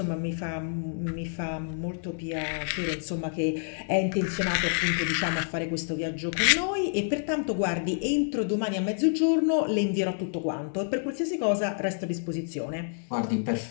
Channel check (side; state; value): right; silent; digital silence